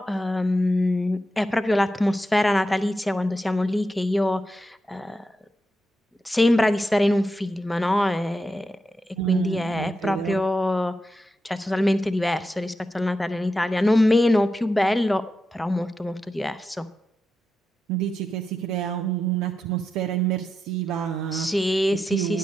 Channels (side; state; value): both; normal; correlation 0.87